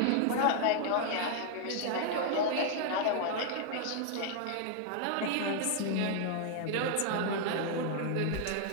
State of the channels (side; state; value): both; different; correlation 0.00